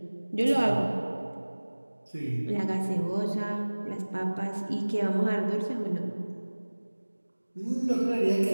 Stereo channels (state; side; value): inverted; both; correlation -1.00